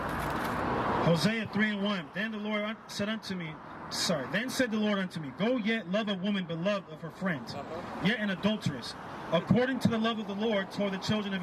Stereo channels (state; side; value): identical; both; correlation 1.00